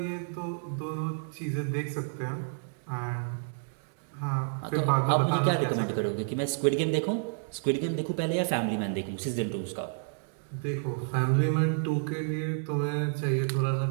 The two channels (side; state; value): left; silent; digital silence